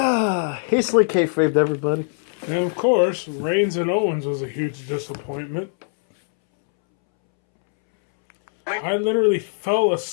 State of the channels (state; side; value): silent; right; 65 dB below the other